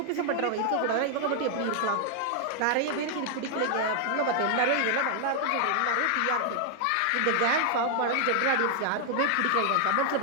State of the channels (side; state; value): both; different; correlation 0.00